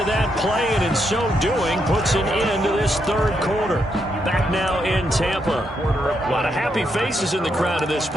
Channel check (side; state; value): both; normal; correlation 0.79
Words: that play, and in so doing puts an end to this 3rd quarter. Back now in Tampa. A lot of happy faces in the crowd at this